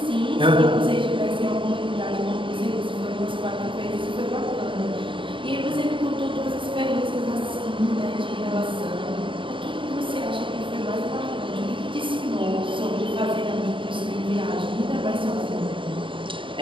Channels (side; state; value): left; late; 0.25 ms